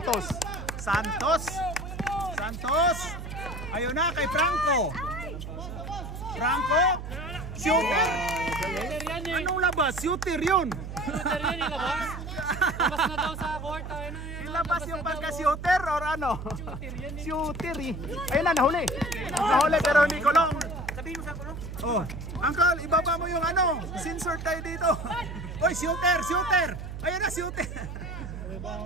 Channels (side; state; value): right; noise; hum, 8 dB below the sound